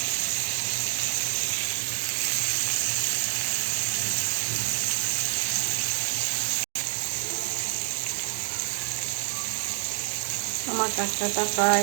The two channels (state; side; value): silent; left; 57 dB below the other